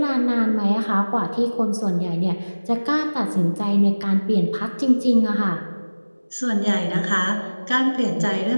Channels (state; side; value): inverted; both; correlation -1.00